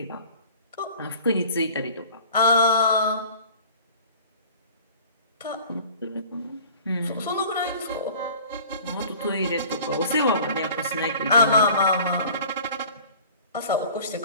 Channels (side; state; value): both; inverted; correlation -0.46